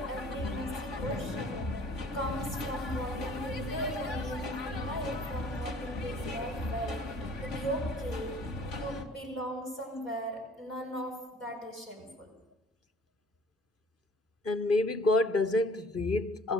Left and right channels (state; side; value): normal; both; correlation 0.53